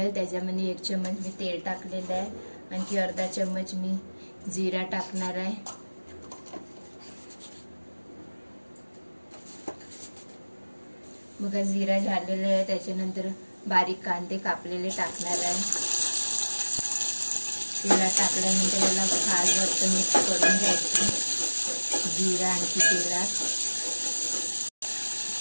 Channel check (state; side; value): inverted; both; correlation -1.00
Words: त्याच्यामध्ये 1 चम्मच मी तेल टाकलेलं आहे, आणखी अर्धा चम्मच मी जिरा टाकणार आहे। बघा जिरा झालेला आहे, त्याच्यानंतर बारीक कांदे कापलेले टाकणार आहे। तेलात टाकल्यानंतर याला खालवर मिक्स करून घ्यायचं, जिरा आणखी तेलात